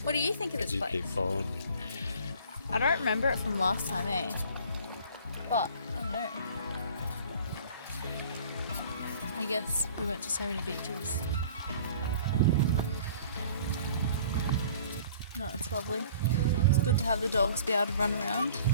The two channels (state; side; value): inverted; both; correlation -0.49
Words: What do you think of this place? Keep following. I don't remember it from last time, eh? But I don't know. I guess we went to so many beaches. No, it's lovely. It's good to have the dogs be able to run around.